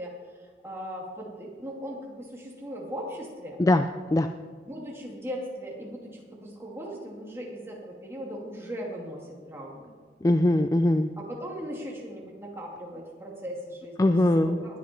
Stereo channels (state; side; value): normal; both; correlation 0.84